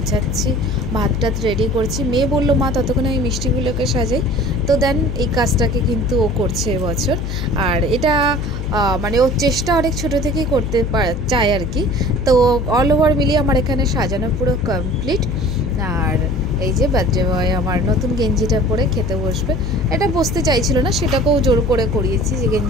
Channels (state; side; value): noise; left; hum, 4 dB below the sound